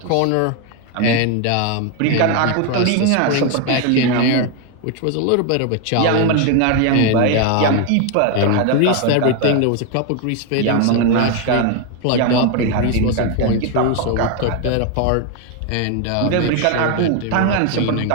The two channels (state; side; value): different; both; correlation 0.01